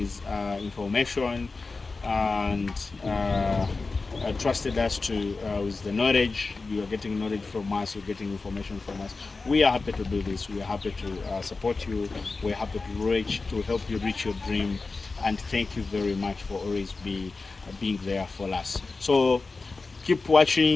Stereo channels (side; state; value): right; quieter; 3.9 dB